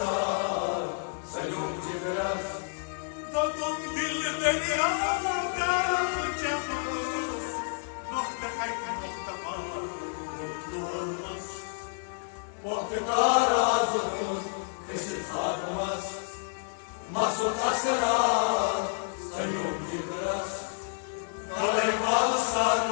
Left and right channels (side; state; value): right; silent; digital silence